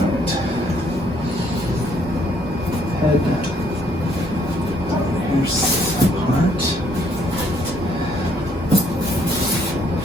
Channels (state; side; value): normal; both; correlation 0.67